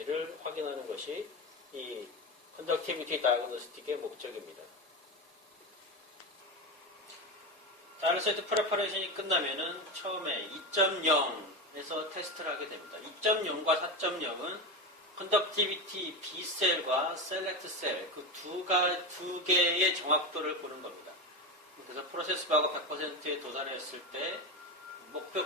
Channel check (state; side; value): normal; both; correlation 0.18